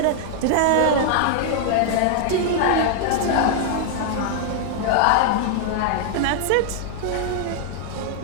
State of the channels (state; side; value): different; both; correlation 0.00